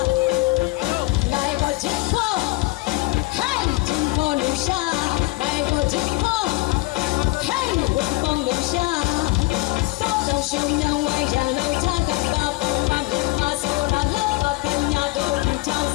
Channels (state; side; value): quieter; right; 21.8 dB